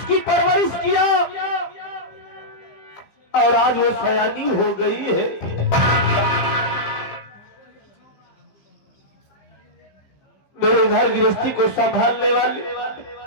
परवरिश किया और आज वो सयानी हो गई है। मेरे घर गृहस्थी को संभालने वाले,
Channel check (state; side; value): late; right; 15 ms